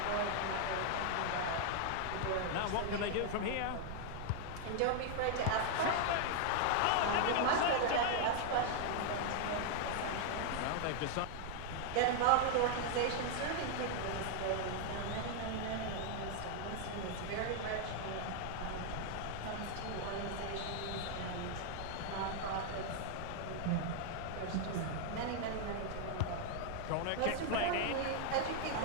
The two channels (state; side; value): different; both; correlation 0.00